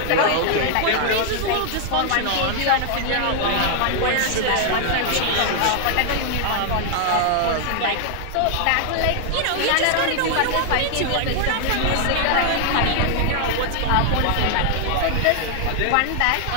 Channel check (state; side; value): different; both; correlation 0.00